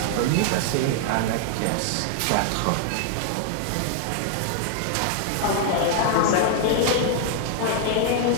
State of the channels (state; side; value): different; both; correlation 0.00